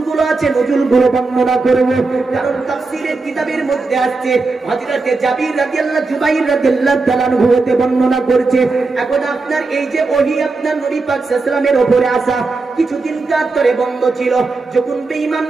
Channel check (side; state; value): left; quieter; 3.8 dB